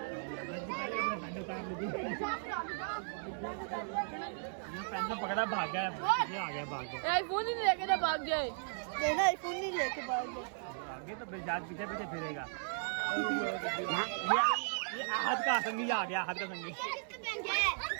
पेंसिल पकड़ा भाग गया, ये आ गया भाग गया। आईफोन ही लेके ना भाग गए। ना आईफोन नहीं लेके भाग गए। आगे तो बेजाज पीछे पीछे फिरेगा। ये हाथ का संगी आ गया, हाथ का संगी।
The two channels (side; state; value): left; silent; digital silence